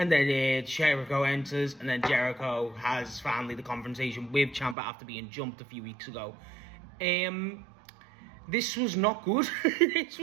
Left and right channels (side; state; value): left; drops out; at 4.8 s